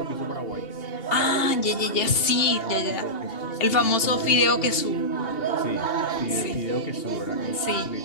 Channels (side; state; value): right; late; 2.8 ms